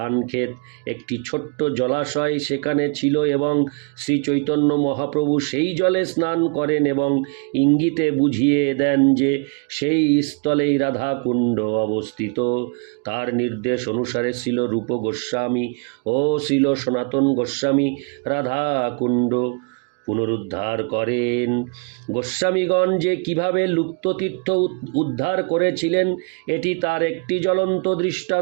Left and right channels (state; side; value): quieter; left; 35.4 dB